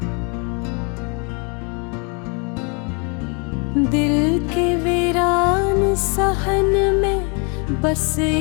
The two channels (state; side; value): quieter; right; 34.1 dB